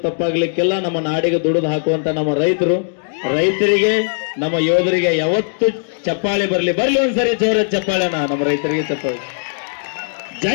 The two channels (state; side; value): silent; right; digital silence